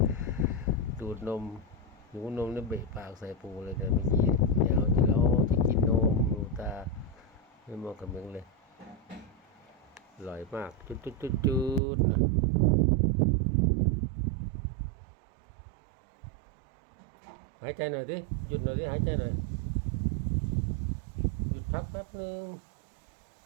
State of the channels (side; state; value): left; drops out; at 11.8 s